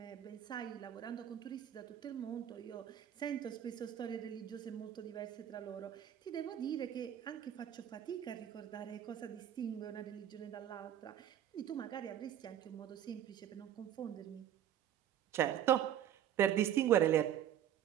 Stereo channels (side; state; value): left; quieter; 10.6 dB